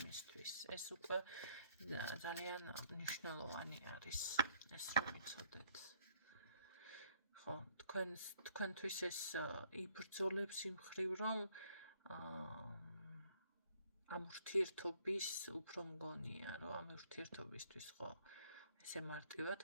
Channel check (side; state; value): both; inverted; correlation -0.65